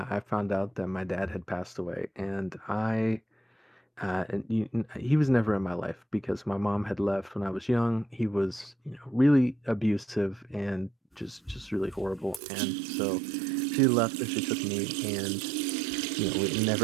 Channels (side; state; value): left; drops out; at 12.4 s